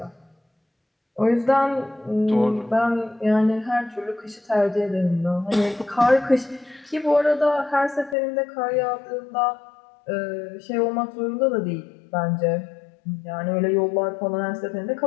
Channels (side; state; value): right; drops out; at 8.2 s